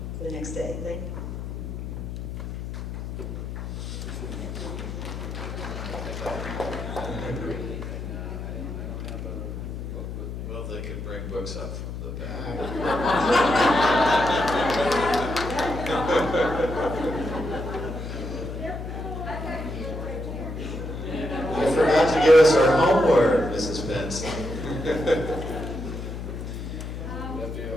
the next day. Thank you. Well, they could bring books up from the back. You forgot to give us our homework, Mrs. Benson.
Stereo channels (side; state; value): left; noise; hum, 6 dB below the sound